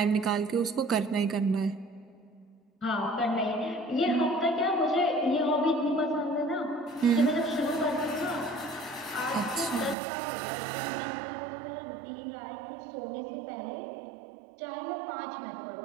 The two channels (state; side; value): drops out; left; at 10.0 s